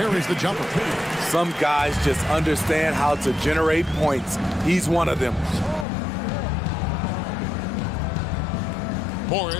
the jumper. Some guys just understand how to generate points. He's one of them.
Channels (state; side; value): drops out; right; at 5.9 s